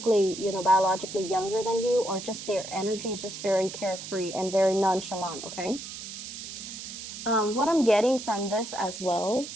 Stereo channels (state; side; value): noise; right; hiss, 10 dB below the sound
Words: you know, biologically younger than you, or just their energy is just very carefree and very nonchalant, okay? What I'm getting from this as well